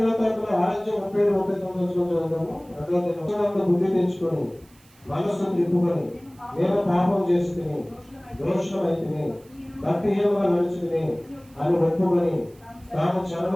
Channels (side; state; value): right; noise; hiss, 29 dB below the sound